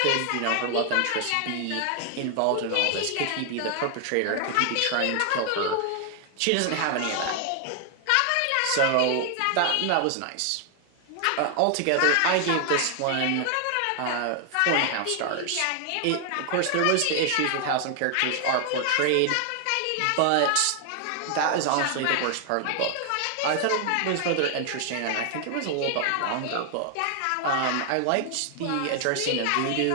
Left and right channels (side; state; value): both; different; correlation 0.00